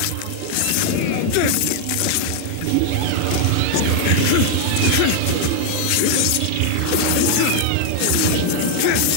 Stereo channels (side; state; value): both; different; correlation 0.00